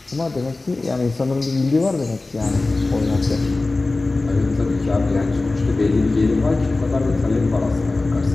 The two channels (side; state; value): right; quieter; 3.2 dB